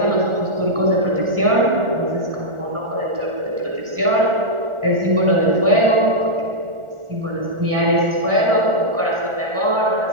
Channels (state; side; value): late; left; 1.4 ms